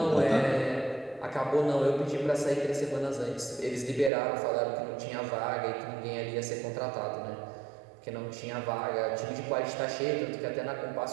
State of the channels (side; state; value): left; drops out; at 4.1 s